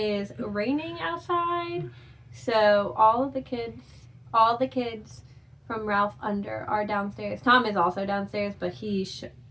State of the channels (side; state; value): both; identical; correlation 1.00